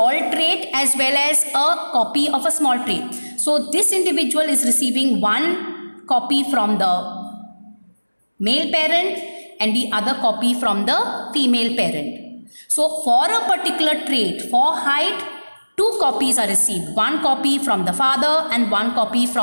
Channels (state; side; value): inverted; both; correlation -1.00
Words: trait as well as a copy of a small trait. So this individual is receiving one copy from the male parent and the other copy from the female parent. So for a particular trait, for height, two copies are received. One copy from the father and one copy